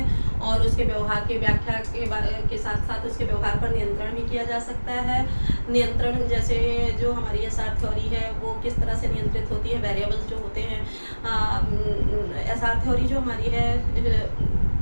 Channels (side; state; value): both; inverted; correlation -1.00